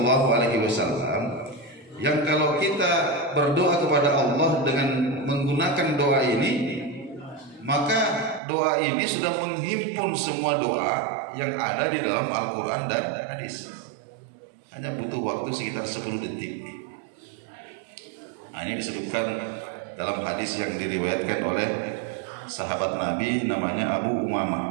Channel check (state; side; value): drops out; left; at 8.4 s